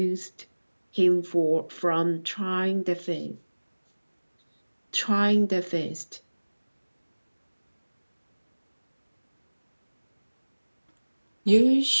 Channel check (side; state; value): both; inverted; correlation -1.00